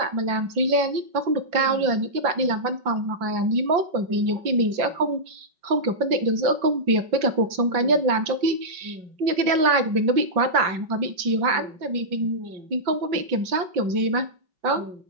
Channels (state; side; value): late; left; 5.3 ms